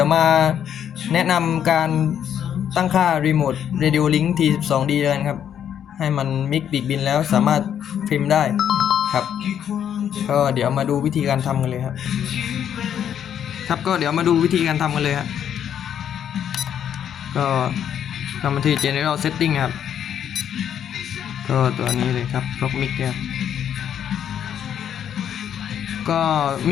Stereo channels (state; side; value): quieter; right; 9.3 dB